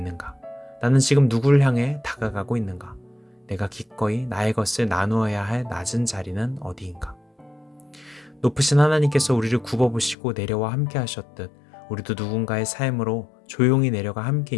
나는 지금 누구를 향해 다가가고 있는가? 내가 기꺼이 나의 것을 나누어야 할 낮은 자리는 어디인가? 높으신 하나님께서 우리를 굽어보시고 내려와 함께 하셨듯 우리도 누군가의 삶으로 조용히 내려가 함께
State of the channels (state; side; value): drops out; right; at 10.2 s